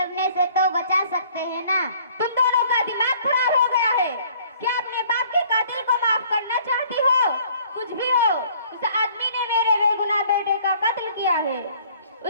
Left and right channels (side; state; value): both; inverted; correlation -0.57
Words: से तो बचा सकते हैं ना। तुम दोनों का दिमाग खराब हो गया है। क्या अपने बाप के कातिल को माफ करना चाहती हो? कुछ भी हो, उस आदमी ने मेरे बेगुनाह बेटे का कत्ल किया है।